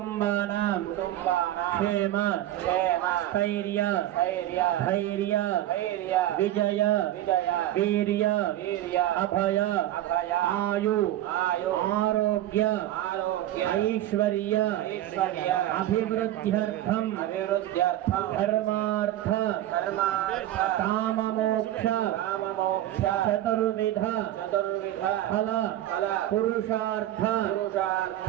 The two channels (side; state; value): left; quieter; 13.5 dB